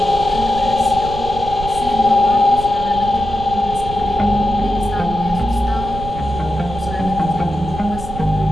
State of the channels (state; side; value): noise; right; rumble, 10 dB below the sound